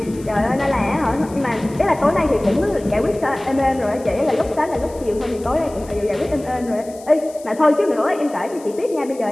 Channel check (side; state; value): left; noise; hiss, 22 dB below the sound